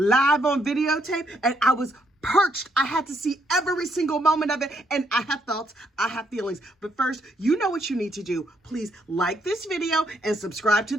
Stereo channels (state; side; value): normal; both; correlation 0.73